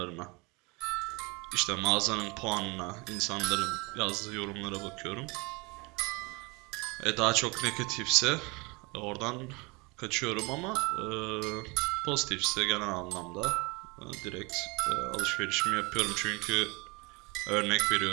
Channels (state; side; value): quieter; left; 27.4 dB